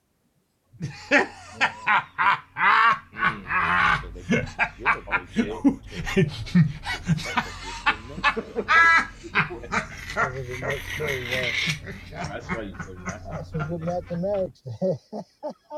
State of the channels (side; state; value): both; identical; correlation 1.00